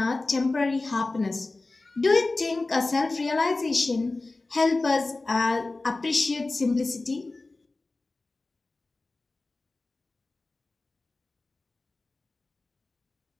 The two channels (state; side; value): quieter; right; 3.3 dB